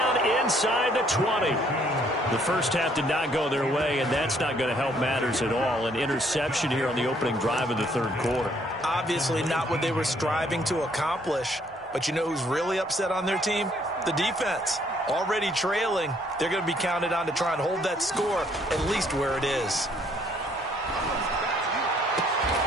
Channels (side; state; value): both; normal; correlation 0.65